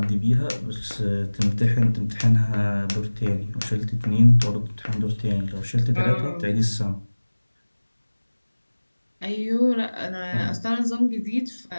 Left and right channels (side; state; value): both; inverted; correlation -1.00